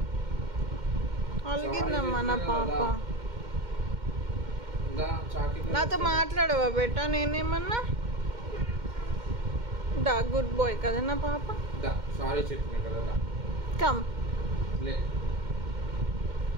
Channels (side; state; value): left; late; 2.1 ms